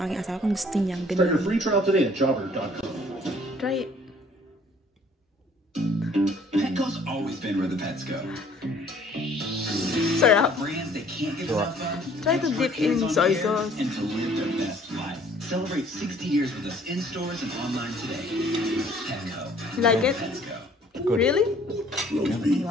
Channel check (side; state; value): both; normal; correlation 0.57